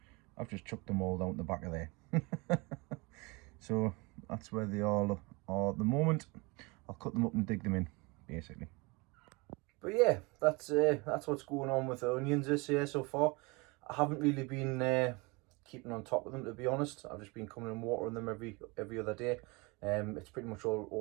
I've just chucked them all down the back of there. So that's where they all are at the moment. I'll cut them up and dig them in, basically. But yeah, that's what's going on with the onions this year so far. I haven't really been keeping on top of them, to be honest. I've just been coming and watering them every other day. It's pretty much all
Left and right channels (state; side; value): quieter; left; 26.9 dB